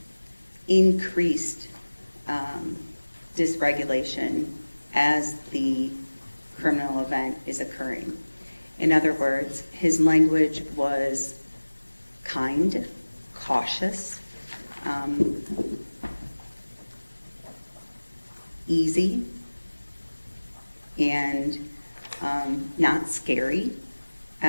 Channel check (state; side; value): inverted; both; correlation -1.00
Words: increased dysregulation as the criminal event is occurring. In other words, his language was kind, cautious, easy, and not scary